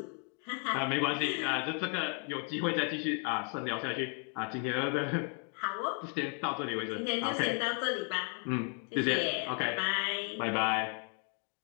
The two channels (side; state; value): right; quieter; 37.1 dB